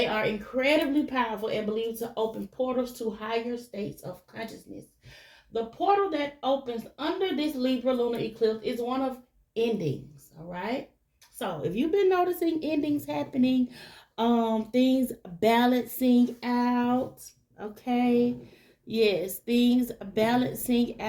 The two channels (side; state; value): both; identical; correlation 1.00